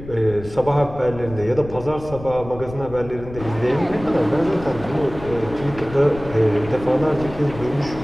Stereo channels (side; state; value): left; noise; rumble, 14 dB below the sound